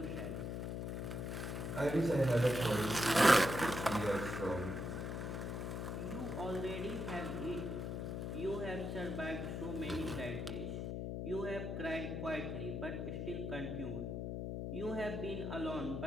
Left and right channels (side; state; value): left; noise; hum, 3 dB below the sound